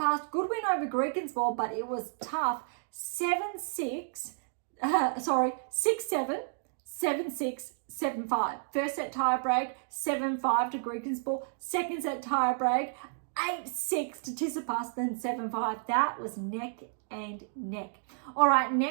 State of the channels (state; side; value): silent; left; digital silence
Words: good win over Greekensborg, but it was tough. 6-7, 7-6, 7-5. First set tie break, 7-5 to Greekensborg. Second set tie break, 8-6 to Tsitsipas, then 7-5. That was neck and neck. All right,